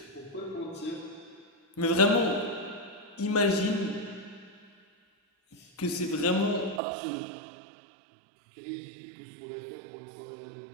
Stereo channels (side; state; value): left; drops out; at 6.8 s